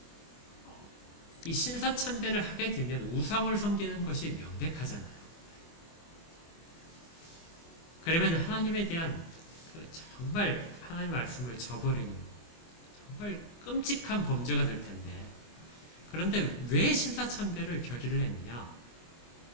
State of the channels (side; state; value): right; late; 24 ms